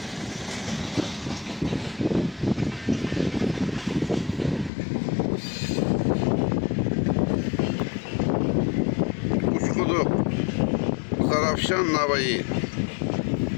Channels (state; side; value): drops out; right; at 4.7 s